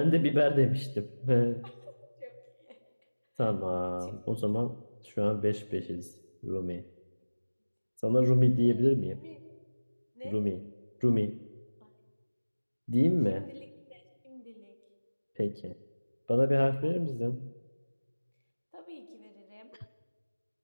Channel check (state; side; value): inverted; both; correlation -1.00